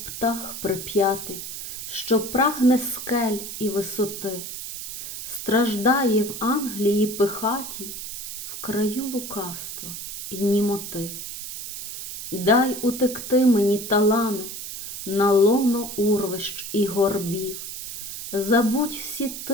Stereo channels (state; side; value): noise; right; hiss, 8 dB below the sound